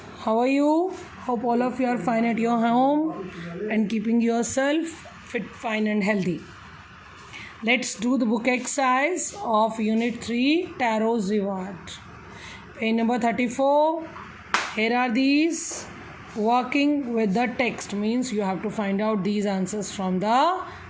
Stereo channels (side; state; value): both; identical; correlation 1.00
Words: How are you? Hope all of you are fine at your home and keeping yourself fit, fine, and healthy. Let's do the book exercise of Unit 3 Tarot's Reward. Page number 34. Here are these. Working with the text means you have to find out these answers from the